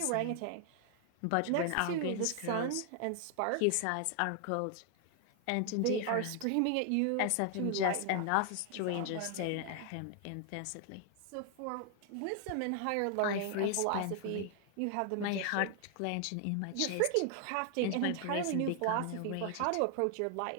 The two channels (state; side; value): different; both; correlation 0.00